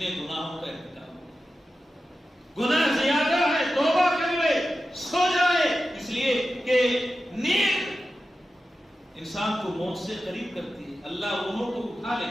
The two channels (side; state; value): both; normal; correlation 0.92